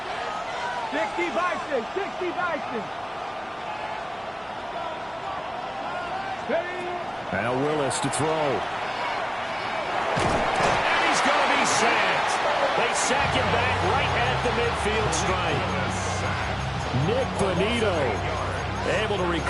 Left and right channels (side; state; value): both; identical; correlation 1.00